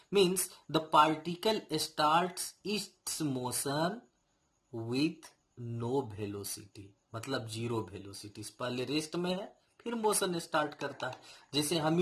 Means the particle starts its motion with no velocity, मतलब 0 वेलोसिटी। पहले रेस्ट में है फिर मोशन स्टार्ट करता है। जैसे हम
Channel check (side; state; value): both; identical; correlation 1.00